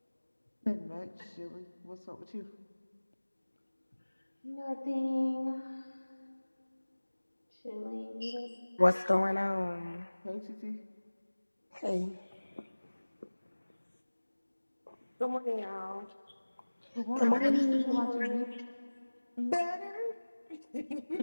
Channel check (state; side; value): inverted; both; correlation -1.00